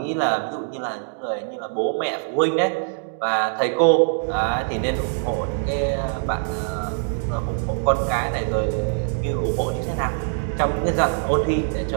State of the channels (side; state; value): left; silent; digital silence